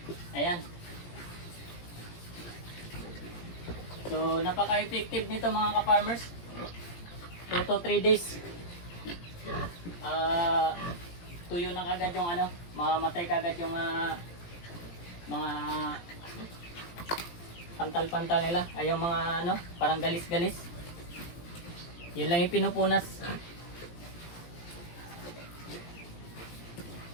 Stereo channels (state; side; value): late; right; 17 ms